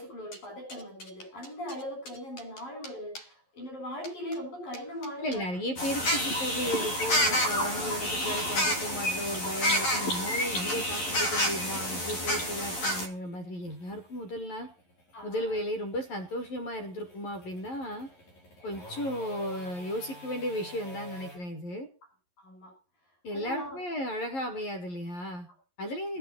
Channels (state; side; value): late; right; 11 ms